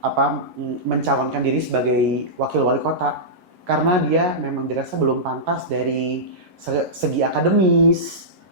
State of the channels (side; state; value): left; late; 11 ms